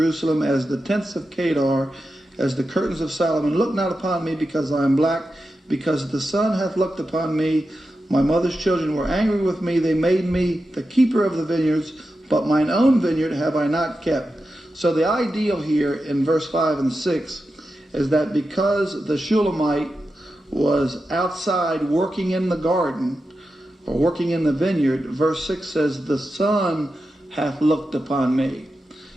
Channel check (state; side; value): normal; both; correlation 0.90